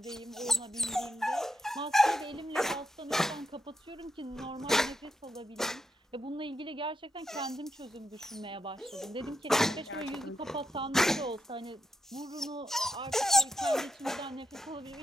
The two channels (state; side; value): normal; both; correlation 0.83